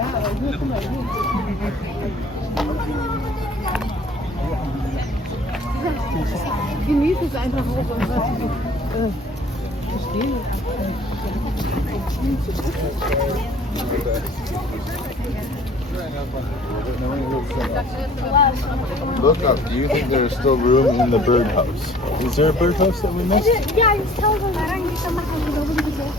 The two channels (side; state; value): both; normal; correlation 0.52